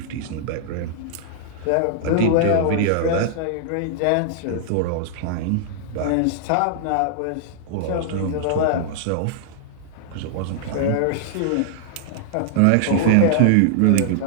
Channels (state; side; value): different; both; correlation -0.01